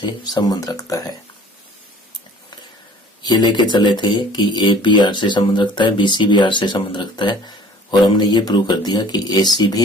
संबंध रखता है। ये लेके चले थे कि ए बी आर से संबंध रखता है, बी सी भी आर से संबंध रखता है, और हमने ये प्रूव कर दिया कि ए सी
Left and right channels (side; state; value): both; normal; correlation 0.50